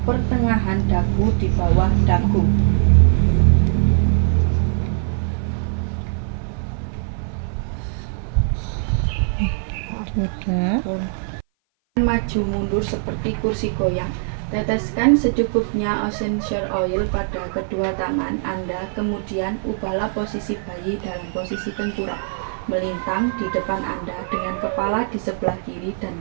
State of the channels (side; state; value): left; silent; 57 dB below the other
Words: pertengahan dagu di bawah dagu. Sudah. Maju mundur seperti kursi goyang. Teteskan secukupnya essential oil pada kedua tangan Anda, kemudian ubahlah posisi bayi dalam posisi tengkurap melintang di depan Anda dengan kepala di sebelah kiri dan